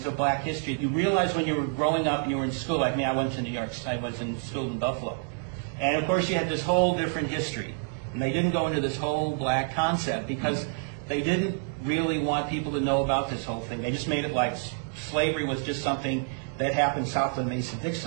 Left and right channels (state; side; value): silent; left; 59 dB below the other